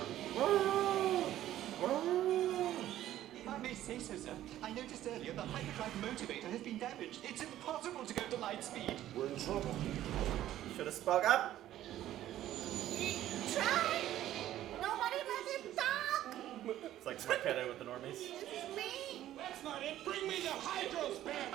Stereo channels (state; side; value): quieter; left; 13.0 dB